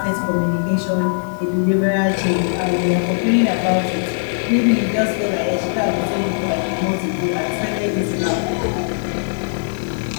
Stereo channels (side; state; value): right; silent; digital silence